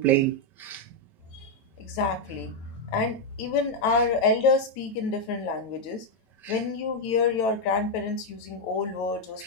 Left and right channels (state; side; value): late; right; 9.1 ms